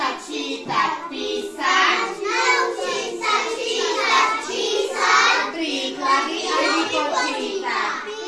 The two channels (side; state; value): both; identical; correlation 1.00